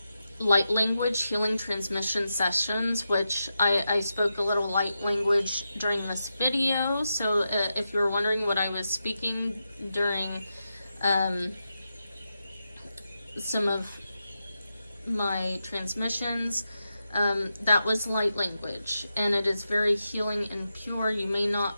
light language healing transmission sessions, which I spoke a little light language during this video. So if you were wondering what I was speaking during some of my transmissions, that was light language, and it is very healing and pure. You may not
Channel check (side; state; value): both; inverted; correlation -0.89